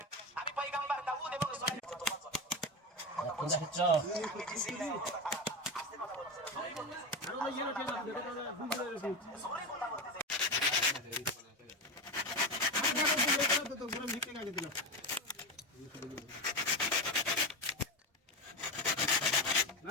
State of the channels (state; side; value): normal; both; correlation 0.18